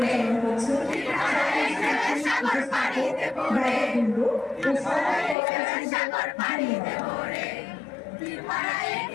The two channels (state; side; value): drops out; right; at 5.4 s